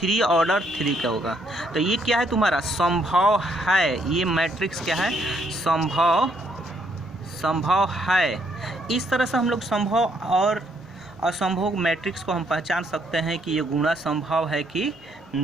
ऑर्डर 3 का होगा। तो ये क्या है तुम्हारा, संभव है। ये मैट्रिक्स क्या है, संभव है। इस तरह से हम लोग संभव और असंभव मैट्रिक्स को हम पहचान सकते हैं कि ये गुणा संभव है कि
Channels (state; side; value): normal; both; correlation 0.71